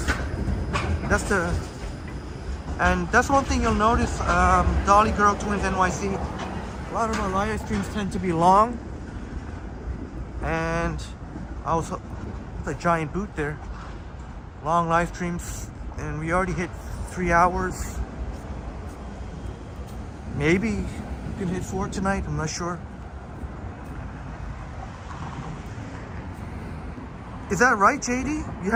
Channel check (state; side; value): identical; both; correlation 1.00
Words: And that's one thing you'll notice. Dolly Girl Twins NYC. A lot of our live streams tend to be long, and a giant boot there. Long live streams, and we already hit 3 hours. Maybe we can hit 4 tonight. I'm not sure. Is that right, JD? You